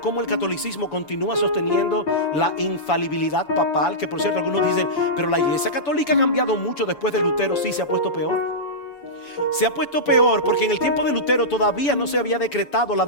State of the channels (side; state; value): right; late; 7.0 ms